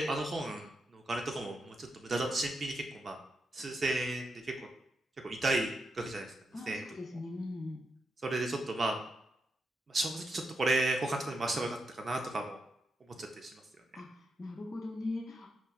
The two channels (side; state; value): both; normal; correlation 0.85